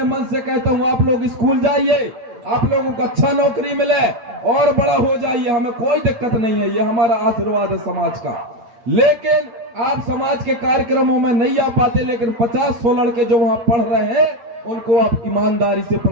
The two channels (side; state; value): left; late; 8.8 ms